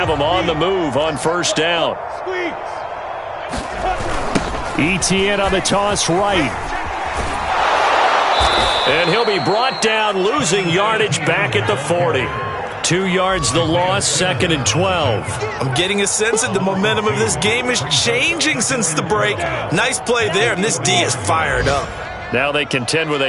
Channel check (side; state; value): both; identical; correlation 1.00